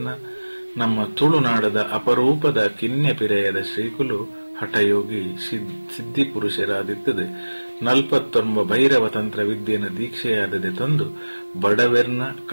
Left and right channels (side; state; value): both; inverted; correlation -1.00